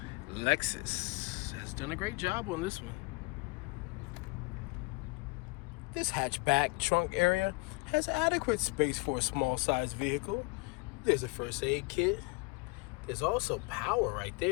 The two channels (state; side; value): quieter; right; 28.1 dB